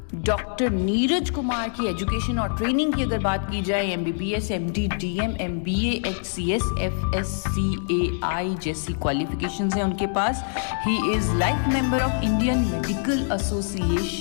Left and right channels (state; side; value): silent; right; digital silence